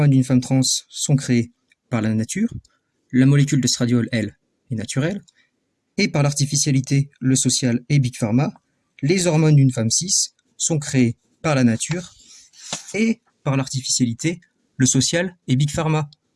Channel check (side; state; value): both; identical; correlation 1.00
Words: d'une femme trans sont créées par la nature, la molécule d'estradiol, elle, est naturelle, et par l'artificialité, le social et Big Pharma, les hormones d'une femme cis sont créées par la nature et par l'artificialité, le social et Big Pharma.